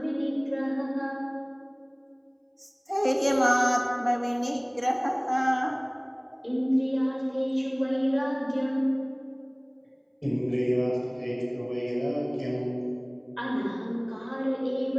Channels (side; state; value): both; identical; correlation 1.00